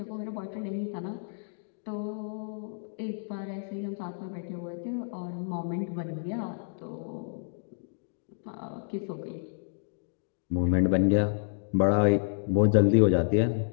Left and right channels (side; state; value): right; silent; digital silence